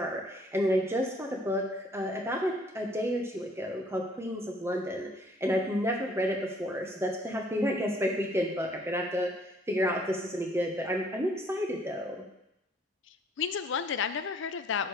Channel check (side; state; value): both; normal; correlation 0.60